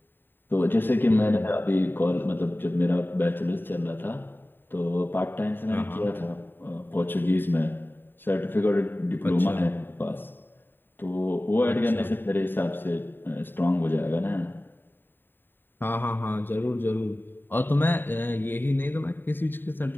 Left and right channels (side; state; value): right; late; 0.095 ms